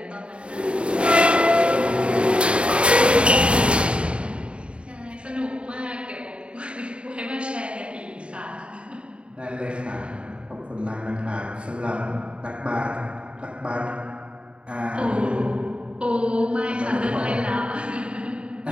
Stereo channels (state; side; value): late; left; 0.057 ms